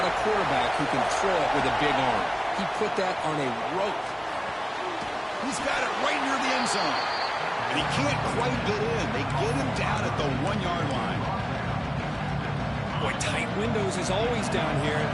a quarterback who can throw it with a big arm. He put that on a rope. He's got it right near the end zone. And he can't quite get in. They get him down at the 1-yard line. Boy, tight windows is always down here.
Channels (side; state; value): both; identical; correlation 1.00